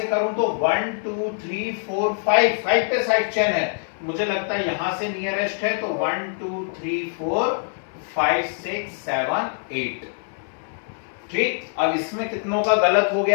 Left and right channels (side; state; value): right; silent; 63 dB below the other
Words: करूं तो 1 2 3 4 5 5 पे साइड चेन है। मुझे लगता है यहां से नियरेस्ट है, तो 1 2 3 4 5 6 7 8। ठीक, अब इसमें कितनों का गलत हो